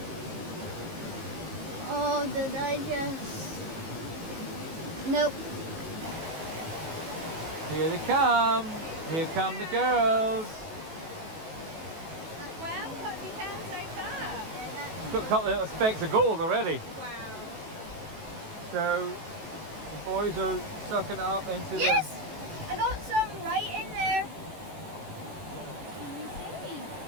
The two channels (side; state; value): left; late; 18 ms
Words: Oh, did I just... Nope. here they come. Here come the girls. Well, what have you found so far? It's got a couple of little specks of gold already. Wow. So the boys are sucking it up into Yes! I got some right in there.